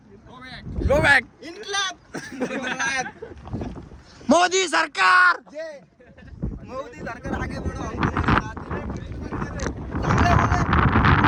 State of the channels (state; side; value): identical; both; correlation 1.00